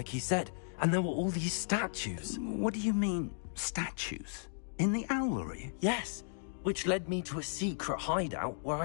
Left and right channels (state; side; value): silent; right; digital silence